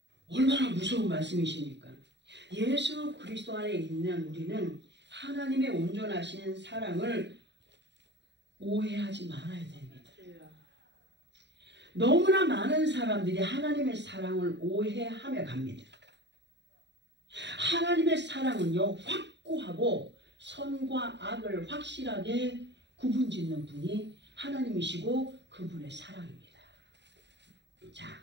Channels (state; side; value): late; left; 0.51 ms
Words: 얼마나 무서운 말씀이십니까? 예수 그리스도 안에 있는 우리는 하나님의 온전하신 사랑을 오해하지 말아야 됩니다. 너무나 많은 사람들이 하나님의 사랑을 오해하며 갑니다. 하나님의 사랑은요, 확고하고 선과 악을 확실하게 구분짓는 분이 하나님이시고 그분의 사랑입니다. 자,